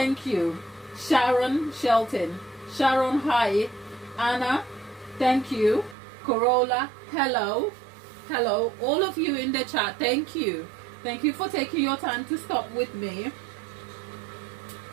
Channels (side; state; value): left; drops out; at 6.0 s